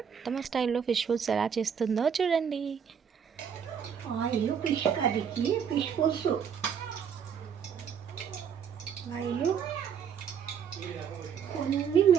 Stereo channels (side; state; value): left; quieter; 7.6 dB